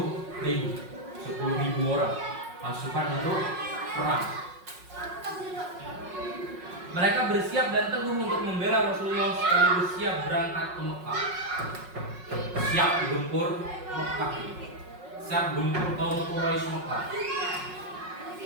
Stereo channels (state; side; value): late; left; 5.5 ms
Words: orang pasukan untuk perang. Mereka bersiap dan teguh untuk membela Rasulullah sekaligus siap berangkat ke Mekah. Siap gempur Mekah. Siap gempur kaum Quraisy Mekah.